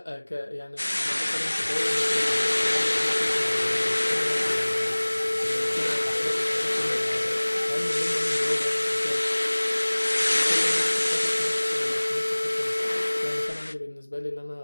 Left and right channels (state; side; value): inverted; both; correlation -1.00